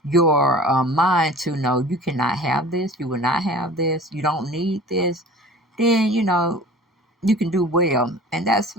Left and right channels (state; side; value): normal; both; correlation 0.43